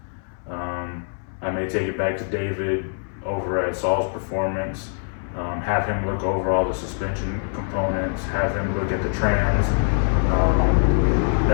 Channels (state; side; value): silent; right; 61 dB below the other